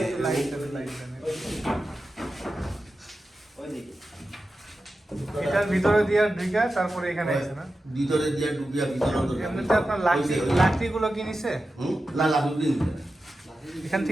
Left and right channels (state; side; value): normal; both; correlation 0.92